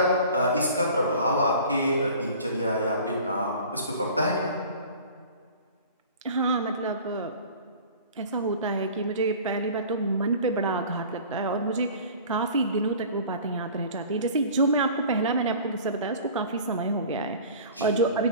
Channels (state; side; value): inverted; both; correlation -0.43